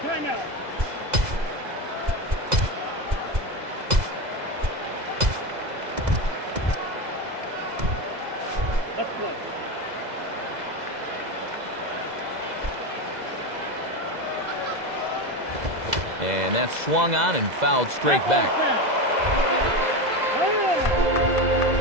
And that's swung on and fouled straight back.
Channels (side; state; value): left; late; 2.0 ms